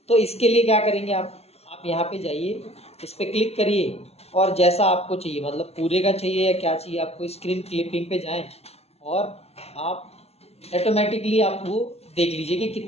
तो इसके लिए क्या करेंगे आप आप यहाँ पे जाइए, इस पर क्लिक करिए और जैसा आपको चाहिए, मतलब पूरे का चाहिए या क्या चाहिए आपको, स्क्रीन क्लिपिंग पे जाएं और आप ऑटोमेटिकली आप वो देख लीजिए कि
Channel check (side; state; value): right; late; 0.30 ms